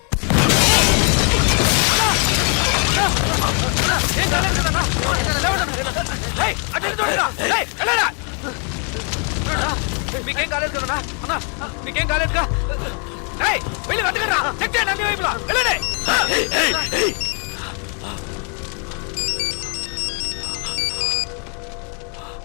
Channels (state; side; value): quieter; right; 38.7 dB